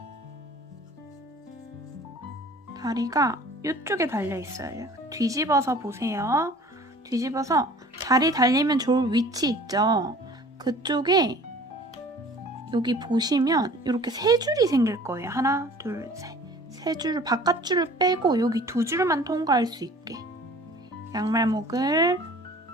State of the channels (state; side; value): normal; both; correlation 0.47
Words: 다리가 이쪽에 달려 있어요. 뒤집어서 보세요. 뒤집어서 다리 달리면 좋을 위치 있죠? 그쪽에 여기 보시면 이렇게 3줄이 생길 거예요. 하나, 둘, 셋. 3줄, 바깥줄을 빼고 여기 2줄만 통과할 수 있게. 양말목을